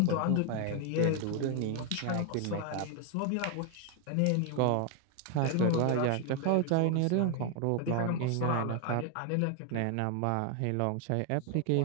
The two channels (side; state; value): both; different; correlation 0.01